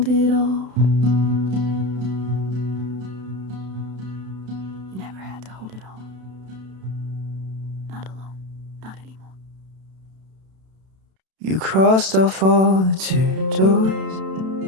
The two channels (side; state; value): left; late; 32 ms